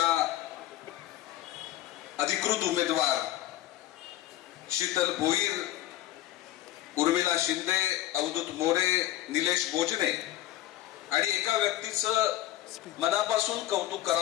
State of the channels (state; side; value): quieter; right; 14.4 dB